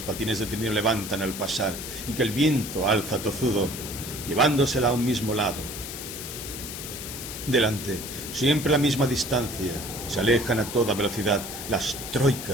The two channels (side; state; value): left; noise; hiss, 8 dB below the sound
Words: patines de trineo levantan al pasar y que el viento alza tozudo, llevándosela a un mismo lado. Delante, siempre a la misma distancia, se alejan a toda velocidad las